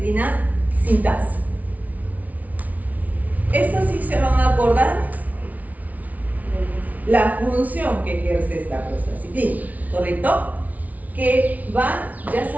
sintasa. Estas sí se van a acordar la función que ejerce esta prostaciclina, ¿correcto? Que va, ya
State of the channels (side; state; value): left; late; 0.073 ms